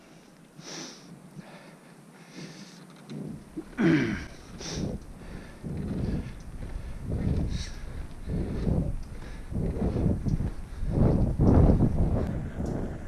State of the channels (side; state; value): both; identical; correlation 1.00